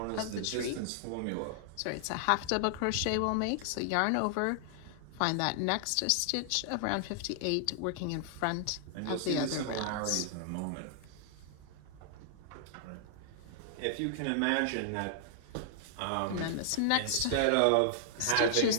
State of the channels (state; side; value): different; both; correlation -0.01